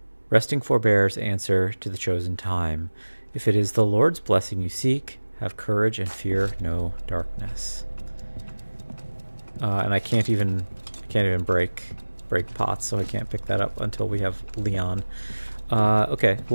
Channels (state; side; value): inverted; both; correlation -1.00